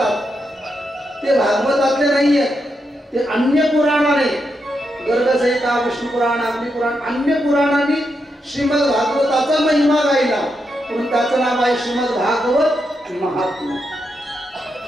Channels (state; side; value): normal; both; correlation 0.83